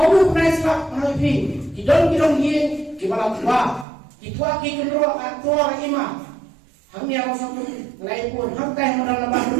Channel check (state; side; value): drops out; left; at 3.9 s